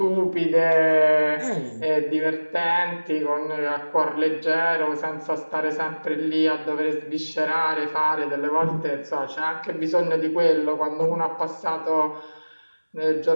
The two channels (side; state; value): both; inverted; correlation -1.00